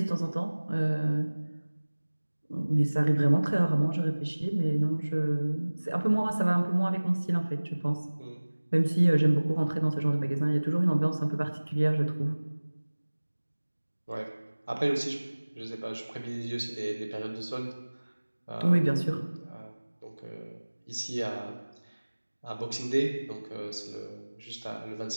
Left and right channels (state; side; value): inverted; both; correlation -1.00